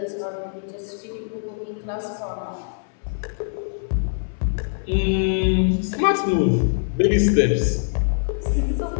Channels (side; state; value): right; silent; 60 dB below the other